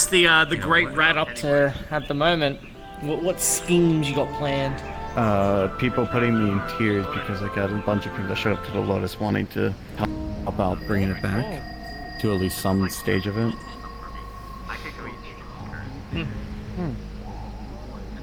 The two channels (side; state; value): both; identical; correlation 1.00